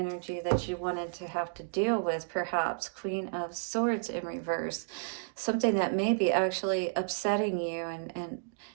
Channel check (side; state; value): left; silent; digital silence